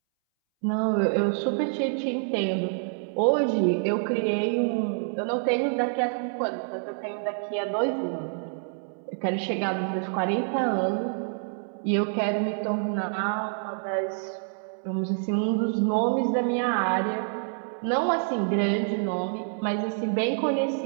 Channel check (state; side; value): silent; left; 60 dB below the other